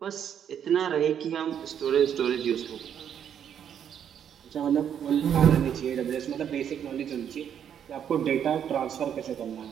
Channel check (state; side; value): quieter; left; 8.8 dB